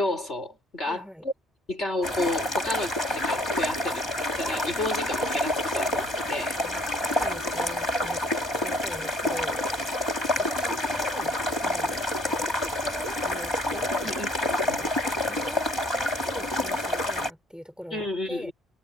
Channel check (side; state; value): both; normal; correlation 0.58